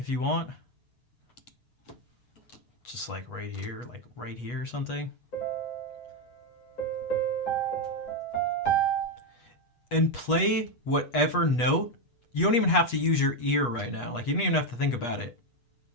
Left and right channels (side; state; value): right; late; 8.2 ms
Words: you want. Just like right here or something. And play whatever note. You don't even have to use your ear right now. Like, you don't even have to think about it.